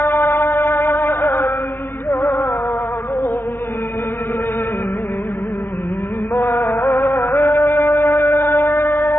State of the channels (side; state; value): right; late; 0.10 ms